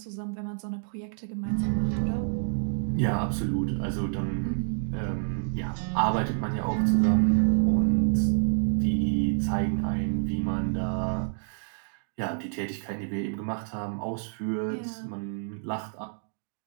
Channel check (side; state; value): left; silent; digital silence